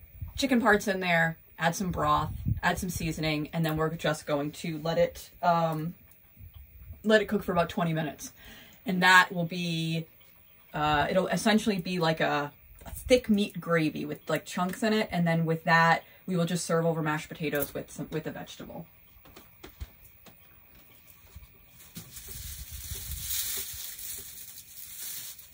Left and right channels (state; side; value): identical; both; correlation 1.00